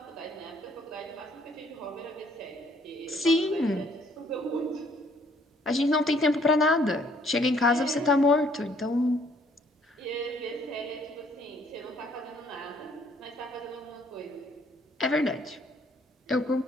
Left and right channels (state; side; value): normal; both; correlation 0.63